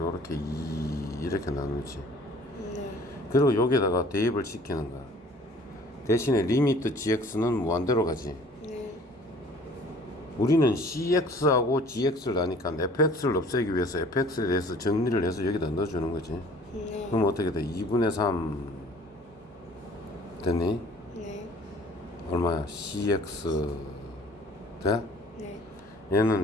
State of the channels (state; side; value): normal; both; correlation 0.52